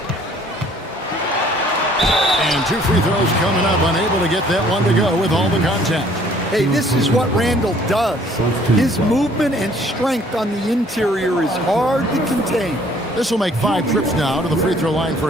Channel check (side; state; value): both; normal; correlation 0.58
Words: And 2 free throws coming up, unable to get that one to go with all the contact. Hey, this is what Randall does. His movement and strength on the interior is hard to contain. This will make 5 trips now to the free throw line for